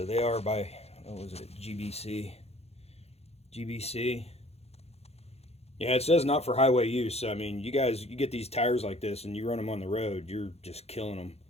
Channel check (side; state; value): right; late; 0.30 ms